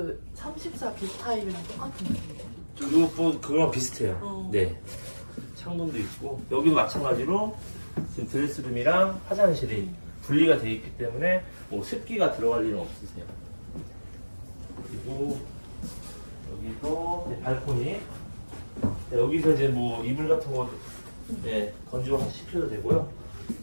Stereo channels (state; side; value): inverted; both; correlation -1.00